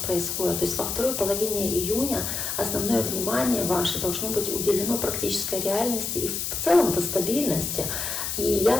То есть во второй половине июня основное внимание ваше должно быть уделено практической реальности и в целом-то стабильности и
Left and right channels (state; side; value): noise; left; hiss, 3 dB below the sound